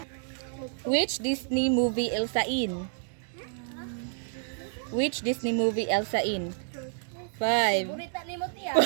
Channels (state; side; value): silent; left; digital silence